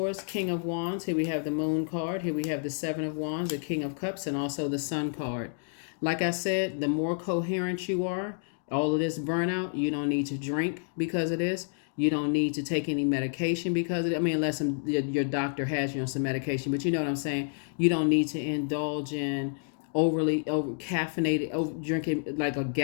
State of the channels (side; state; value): right; silent; digital silence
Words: King of Wands. Here we have the Moon card. Here we have the 7 of Wands, the King of Cups, and also the Sun card. Like I said, the more coherent you are, all of this burnout, you don't need to drink because of this. You don't need to take any medication because of it. I mean, unless your doctor has you on some medication, but you know what I'm saying? You don't need to indulge in over caffeinated, drinking like a